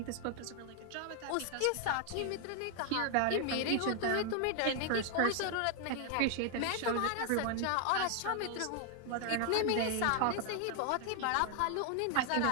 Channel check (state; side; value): different; both; correlation 0.00